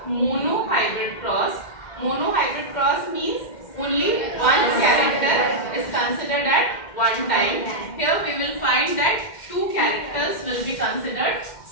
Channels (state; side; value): late; right; 2.1 ms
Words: monohybrid cross. Monohybrid cross means only one character is considered at one time. Here we will find that two characters will be considered